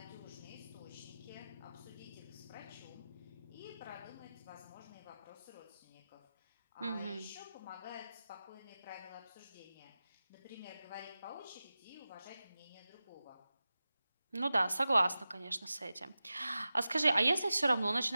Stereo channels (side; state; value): both; inverted; correlation -0.94